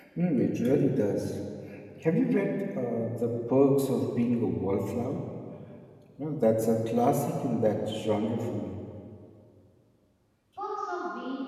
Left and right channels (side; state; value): both; identical; correlation 1.00